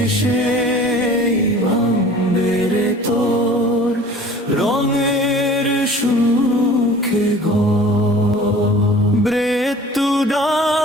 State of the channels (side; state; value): both; normal; correlation 0.45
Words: ভাঙবে রে তোর রঙের সুখে ঘর। মৃত্যু